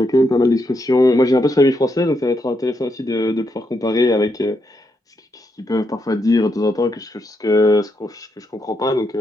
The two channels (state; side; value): normal; both; correlation 0.80